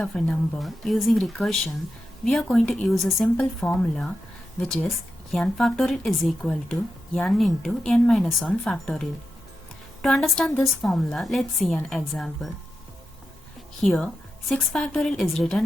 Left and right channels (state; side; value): normal; both; correlation 0.89